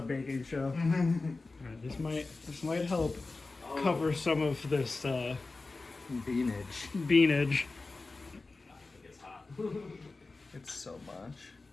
baking show. Alright, this might help cover some of this Beanage. beanage. It's hot. It's so much.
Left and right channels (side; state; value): right; quieter; 3.6 dB